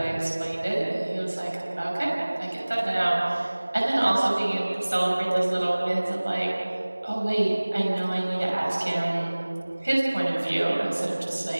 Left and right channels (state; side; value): inverted; both; correlation -1.00